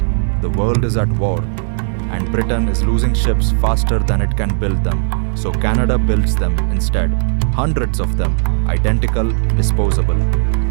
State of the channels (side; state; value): left; silent; digital silence